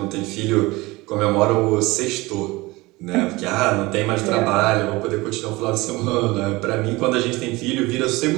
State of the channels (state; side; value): quieter; left; 21.7 dB